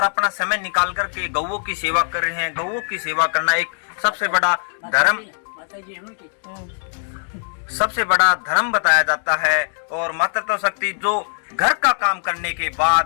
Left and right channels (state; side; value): silent; right; digital silence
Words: अपना समय निकाल करके गौओं की सेवा कर रहे हैं। गौओं की सेवा करना एक सबसे बड़ा धर्म बताया जाता है। और मातृत्व शक्ति जो घर का काम करने के